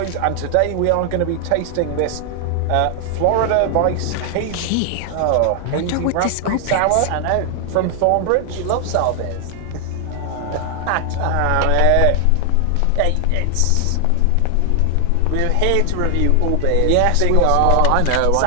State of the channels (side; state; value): both; different; correlation 0.00